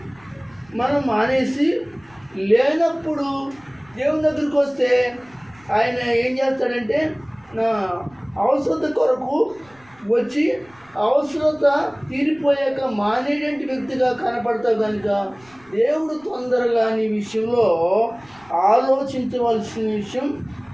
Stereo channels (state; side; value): noise; right; rumble, 30 dB below the sound